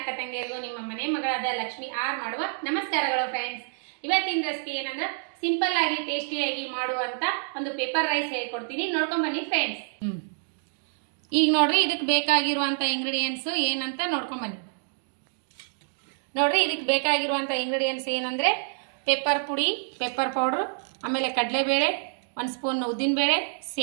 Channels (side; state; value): left; silent; digital silence